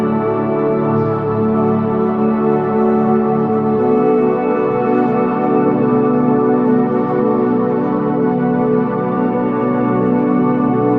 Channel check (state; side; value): identical; both; correlation 1.00